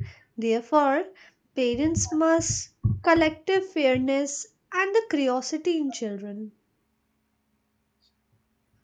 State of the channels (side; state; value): both; identical; correlation 1.00